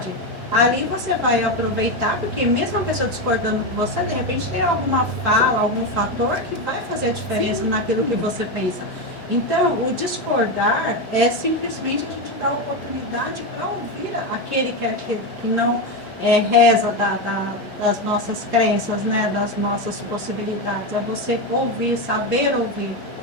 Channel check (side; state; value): both; normal; correlation 0.12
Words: Ali você vai aproveitar, porque mesmo a pessoa discordando com você, de repente tem alguma fala, algum fator que vai fazer a diferença naquilo que você pensa. Então, o discordar é simplesmente a gente dar oportunidade para ouvir aquele que não reza das nossas crenças, né? Das nossas possibilidades. É você ouvir, saber ouvir